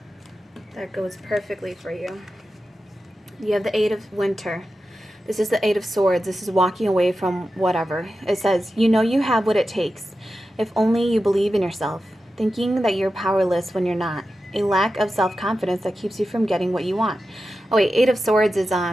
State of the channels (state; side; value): normal; both; correlation 0.92